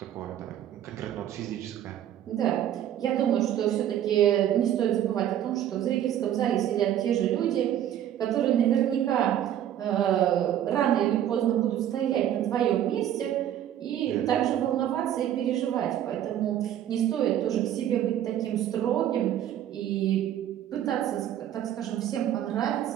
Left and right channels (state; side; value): quieter; left; 11.1 dB